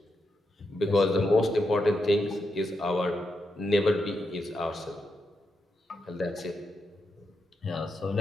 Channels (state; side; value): normal; both; correlation 0.84